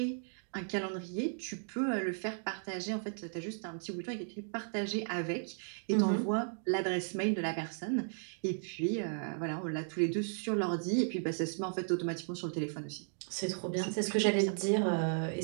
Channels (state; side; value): silent; left; digital silence